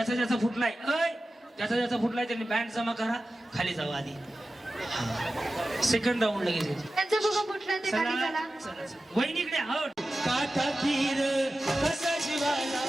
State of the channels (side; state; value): both; normal; correlation 0.94